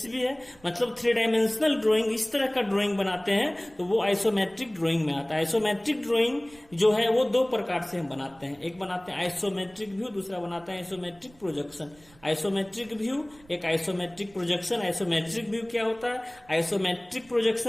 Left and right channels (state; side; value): noise; right; rumble, 28 dB below the sound